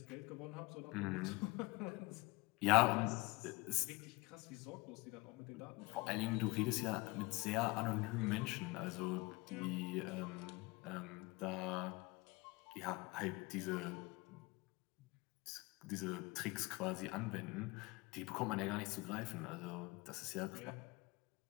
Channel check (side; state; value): right; quieter; 23.9 dB